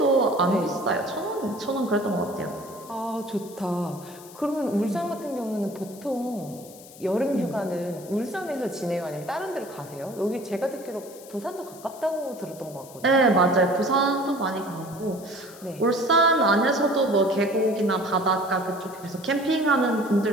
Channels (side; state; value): left; noise; hiss, 20 dB below the sound